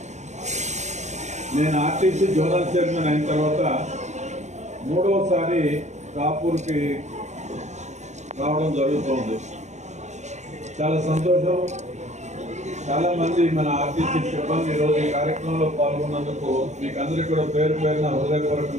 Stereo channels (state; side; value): late; left; 0.34 ms